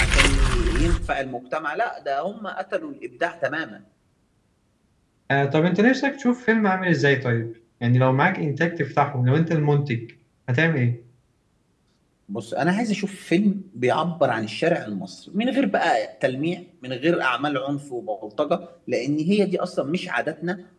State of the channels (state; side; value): identical; both; correlation 1.00